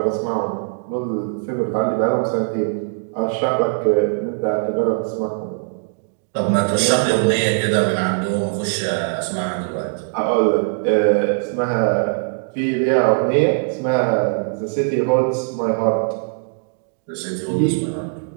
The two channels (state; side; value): silent; left; digital silence